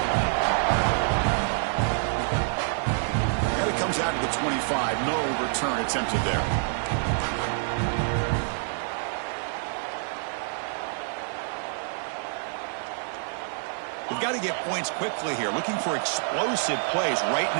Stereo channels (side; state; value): left; silent; digital silence